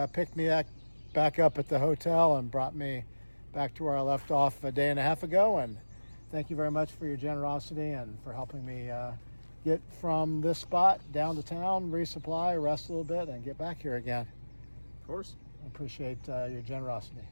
picked me back up at the hotel and brought me back to where I left off a day and a half ago. And thank you very much for your generosity and for helping me get from this spot down to town, resupply, rest a little bit, and get back here again. Of course. I appreciate your generosity.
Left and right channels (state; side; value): inverted; both; correlation -1.00